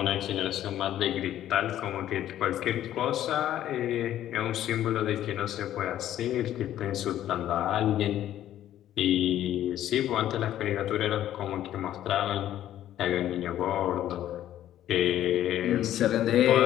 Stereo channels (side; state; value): right; quieter; 12.1 dB